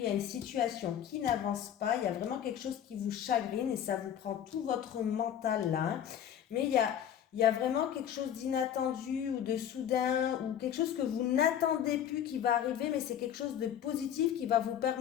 y a une situation qui n'avance pas. Il y a vraiment quelque chose qui vous chagrine et ça vous prend tout votre mental là, hein. Mais il y a vraiment quelque chose d'inattendu ou de soudain ou quelque chose que vous n'attendez plus qui va arriver, mais c'est quelque chose de positif qui va vous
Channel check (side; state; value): right; quieter; 9.8 dB